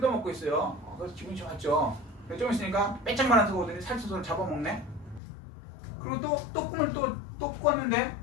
있어요. 그래서 기분이 좋았죠. 좀 있으니까 빼짝만한 소가 오더니 살찐소를 잡아먹네. 그리고 또 꿈을 또 꿨는데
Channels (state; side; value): drops out; right; at 5.2 s